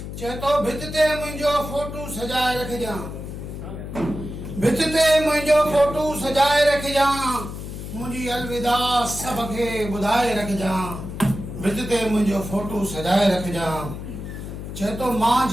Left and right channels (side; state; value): left; noise; hum, 9 dB below the sound